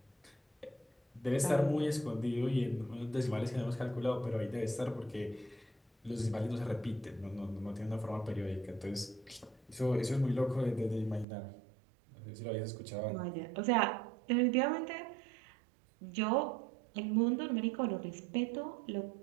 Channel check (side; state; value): left; drops out; at 11.2 s